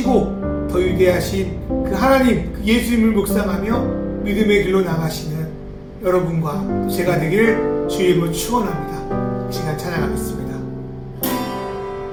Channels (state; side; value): identical; both; correlation 1.00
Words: 더 위대하신 그 하나님, 그 예수님을 묵상하며 믿음의 길로 나가시는 여러분과 제가 되길 주의 이름으로 축원합니다. 이 시간 찬양하겠습니다.